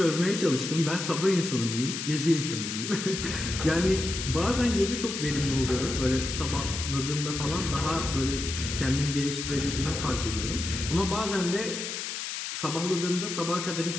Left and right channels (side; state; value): left; noise; hiss, 5 dB below the sound